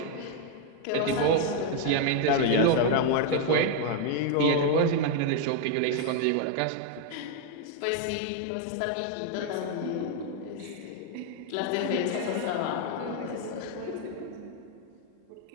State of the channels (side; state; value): both; different; correlation 0.01